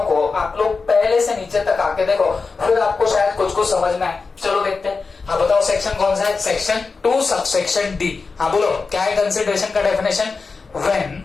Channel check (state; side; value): quieter; right; 4.4 dB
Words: को आप लोग पहले से नीचे तक आके देखो, फिर आपको शायद कुछ कुछ समझ में आए। चलो देखते हैं। हाँ बताओ, सेक्शन कौन सा है? Section 2 subsection D. हाँ बोलो, क्या है कंसिडरेशन का definition? When